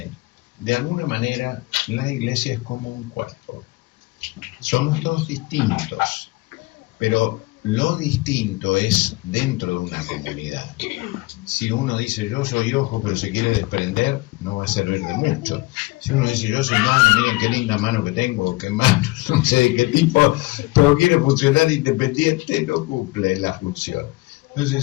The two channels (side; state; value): right; quieter; 21.6 dB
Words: de alguna manera, la iglesia es como un cuerpo. Somos todos distintos, pero lo distinto es dentro de una comunidad. Si uno dice, yo soy ojo, pero se quiere desprender, no va a servir de mucho. Si uno dice, yo soy mano, miren qué linda mano que tengo, qué mano, no sé de qué tipo, pero quiere funcionar independiente, no cumple la función.